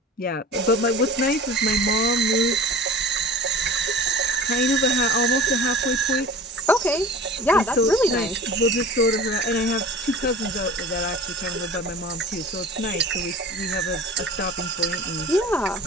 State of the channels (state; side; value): normal; both; correlation 0.39